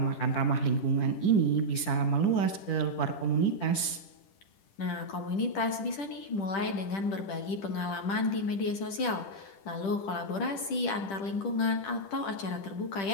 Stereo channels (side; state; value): right; late; 10 ms